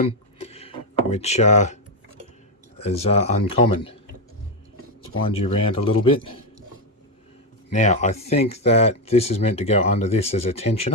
which is uncommon. Let's wind you around a little bit. Now, I think that this is meant to go under this as a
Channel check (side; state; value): both; normal; correlation 0.06